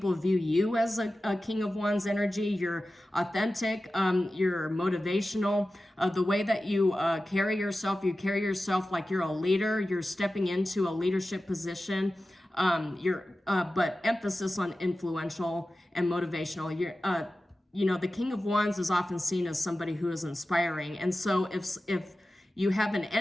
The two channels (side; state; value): both; normal; correlation 0.94